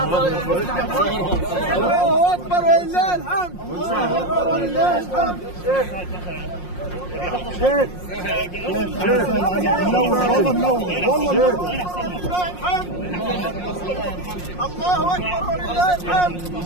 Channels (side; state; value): right; late; 5.6 ms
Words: الله اكبر ولله الحمد. الله اكبر ولله الحمد. شيخ منور والله منور والله منور. الله اكبر ولله الحمد.